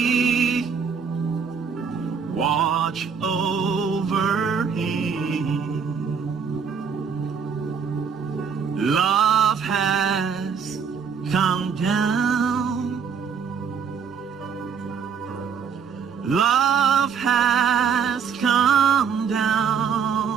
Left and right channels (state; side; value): quieter; left; 6.5 dB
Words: watch over him. Love has come down. Love has come down